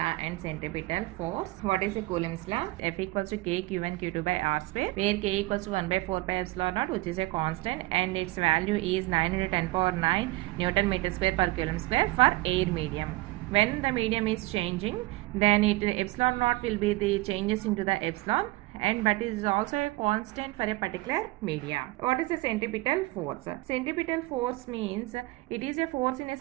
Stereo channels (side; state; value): left; quieter; 20.7 dB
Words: and centripetal force. What is a Coulomb's law? F equals to K Q1 Q2 by R square, where K equals to 1 by 4 pi epsilon naught, which is a constant, and its value is 9 into 10 power 9 Newton meter square per coulomb square for air medium. When the medium is changing, then epsilon naught will be the changes into the epsilon, and but it is also a constant for a particular media. What is the centripetal force? Centripetal force means it is a force in a